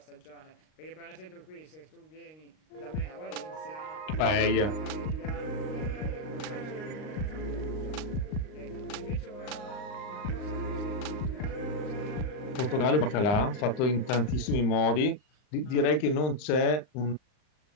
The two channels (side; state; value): right; late; 39 ms